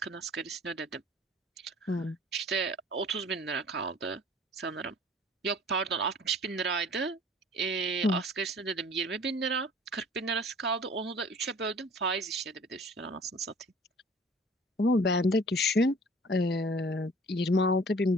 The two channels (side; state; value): both; normal; correlation 0.49